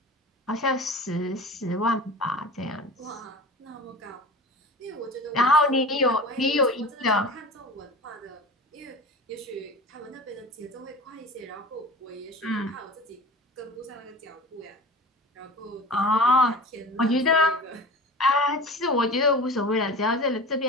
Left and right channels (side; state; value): both; normal; correlation 0.35